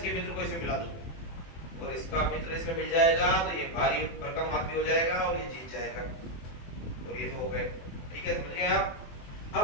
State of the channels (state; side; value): late; right; 24 ms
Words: मित्र को इसमें मिला दो और इसका मित्र इसमें मिल जाएगा तो ये भारी भरकम आदमी हो जाएगा और ये जीत जाएगा। और ये तो हो गए। ठीक है, समझ गए आप?